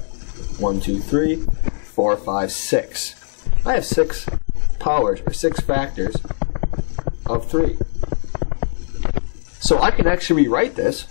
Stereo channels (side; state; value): right; silent; digital silence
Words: 1, 2, 3, 4, 5, 6. I have 6 powers, or 6 factors of 3. So I can actually rewrite this